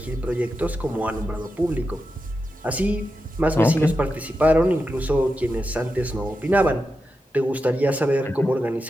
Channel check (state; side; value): normal; both; correlation 0.89